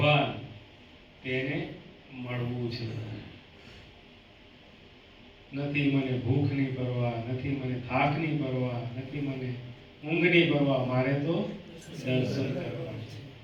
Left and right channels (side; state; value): both; identical; correlation 1.00